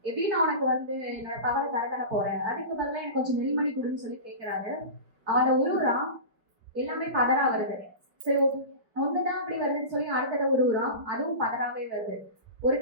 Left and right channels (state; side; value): late; left; 4.6 ms